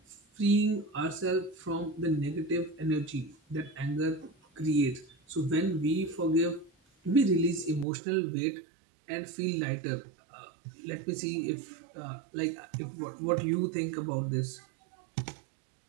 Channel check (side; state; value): left; drops out; at 7.9 s